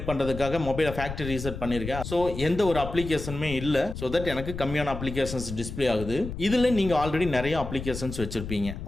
பண்றதுக்காக மொபைலை ஃபேக்டரி ரீசெட் பண்ணிருக்கேன். சோ எந்த ஒரு அப்ளிகேஷனுமே இல்ல. சோ தட் எனக்கு கம்மியான அப்ளிகேஷன்ஸ் டிஸ்ப்ளே ஆகுது. இதுல நீங்க ஆல்ரெடி நிறைய அப்ளிகேஷன்ஸ் வச்சிருப்பீங்க.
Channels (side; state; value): left; noise; rumble, 8 dB below the sound